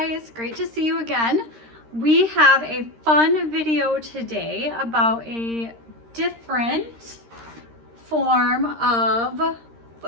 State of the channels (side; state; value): left; late; 13 ms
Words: great to see you again. We have a fun video today about a different form of